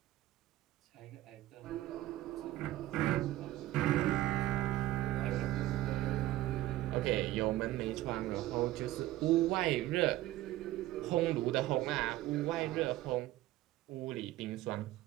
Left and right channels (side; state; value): left; quieter; 15.8 dB